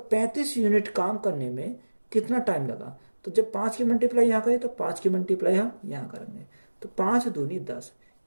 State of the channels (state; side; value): inverted; both; correlation -1.00